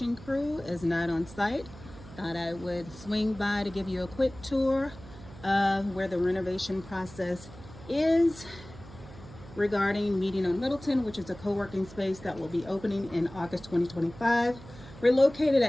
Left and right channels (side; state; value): right; noise; hum, 17 dB below the sound